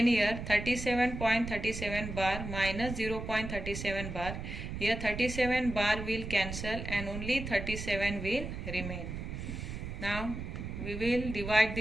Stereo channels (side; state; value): right; noise; rumble, 6 dB below the sound